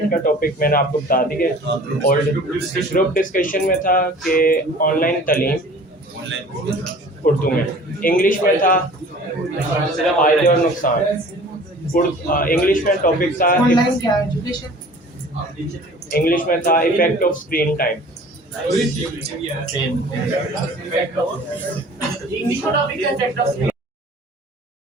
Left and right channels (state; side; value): normal; both; correlation 0.46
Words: का टॉपिक मैंने आपको बता दिया। और ग्रुप डिस्कशन में था कि ऑनलाइन तालीम उर्दू में, इंग्लिश में था फायदे और नुकसान। इंग्लिश में टॉपिक था, इंग्लिश में था effect of screen time. English का टॉपिक है इफेक्ट ऑफ